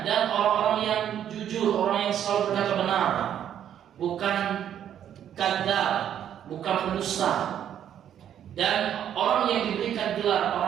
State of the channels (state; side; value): quieter; left; 9.9 dB